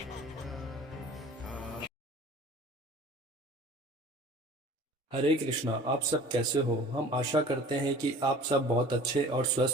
हरे कृष्णा। आप सब कैसे हो? हम आशा करते हैं कि आप सब बहुत अच्छे और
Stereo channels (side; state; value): both; normal; correlation 0.45